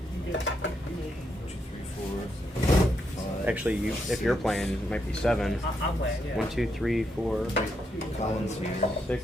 3, 4, 5. Actually, if you're playing, it might be 7. I'm playing, yeah. 1, 2, 3, 4, Colin's here. 6,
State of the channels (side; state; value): both; normal; correlation 0.79